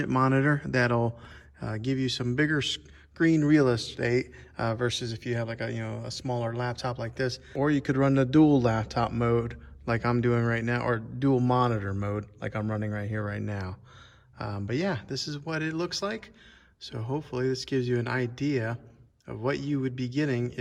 monitor that'll give you some bigger screen real estate versus if you have like a smaller laptop like this, or you could run the dual laptop mode like I'm doing right now, or dual monitor mode like I'm running right here right now. But yeah, this is what it looks like. So hopefully this gives you an idea of what you would be getting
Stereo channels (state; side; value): identical; both; correlation 1.00